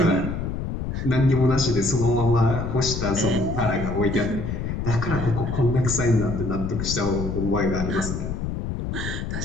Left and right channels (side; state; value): left; noise; rumble, 4 dB below the sound